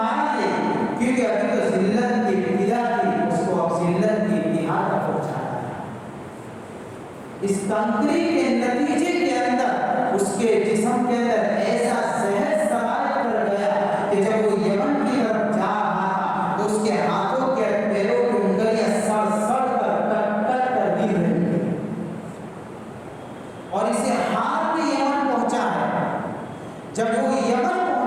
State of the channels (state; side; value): identical; both; correlation 1.00